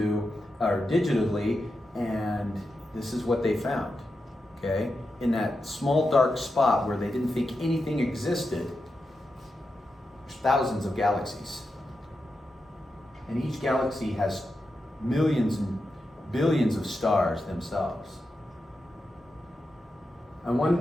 or digitally, and this is what they found, okay? In that small dark spot where they didn't think anything existed, there's thousands of galaxies. And each galaxy has millions and billions of stars themselves. And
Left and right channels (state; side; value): normal; both; correlation 0.89